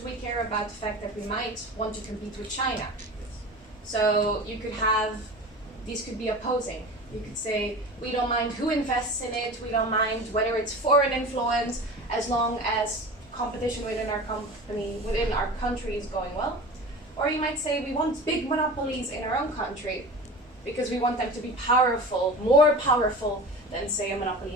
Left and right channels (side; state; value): both; normal; correlation 0.34